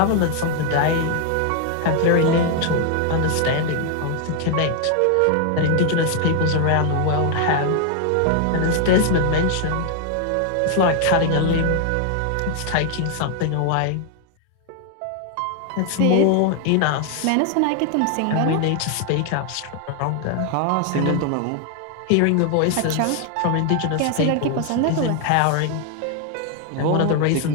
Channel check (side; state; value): both; different; correlation 0.00